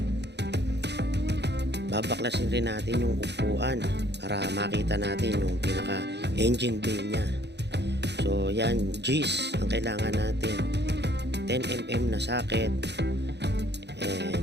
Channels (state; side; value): late; left; 0.50 ms